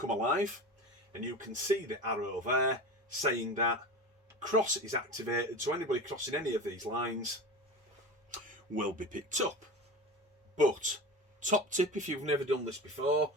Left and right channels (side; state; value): both; normal; correlation 0.30